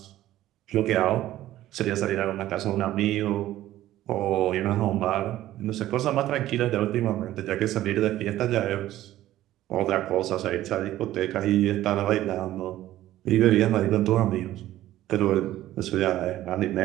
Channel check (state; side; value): quieter; left; 14.2 dB